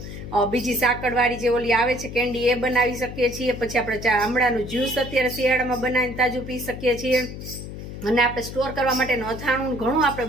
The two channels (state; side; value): noise; left; hum, 10 dB below the sound